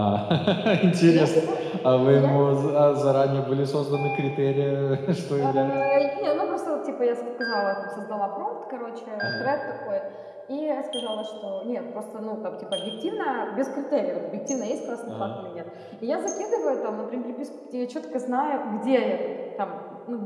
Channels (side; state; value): both; identical; correlation 1.00